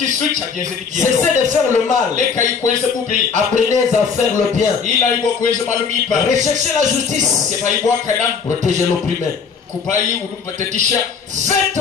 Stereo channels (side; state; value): right; quieter; 5.9 dB